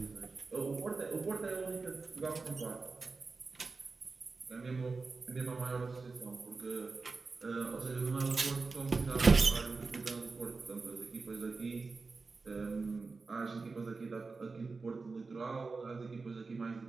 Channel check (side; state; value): left; quieter; 4.2 dB